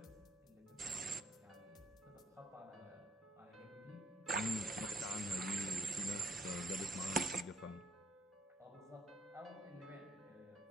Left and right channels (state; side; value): normal; both; correlation 0.68